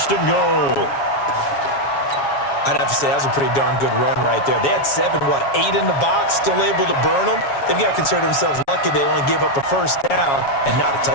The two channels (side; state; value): right; late; 7.2 ms